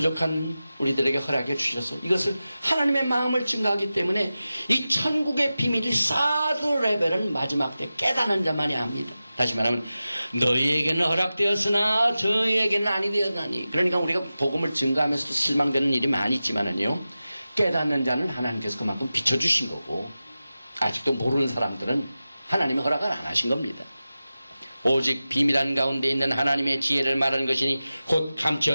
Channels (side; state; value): both; inverted; correlation -0.95